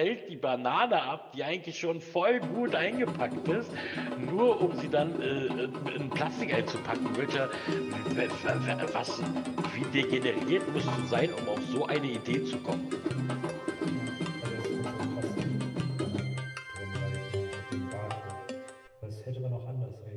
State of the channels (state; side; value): identical; both; correlation 1.00